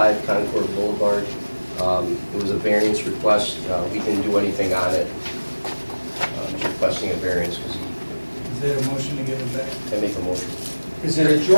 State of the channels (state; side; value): inverted; both; correlation -1.00